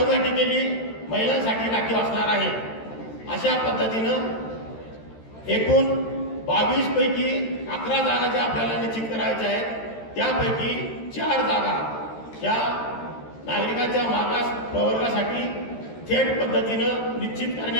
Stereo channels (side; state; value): right; late; 13 ms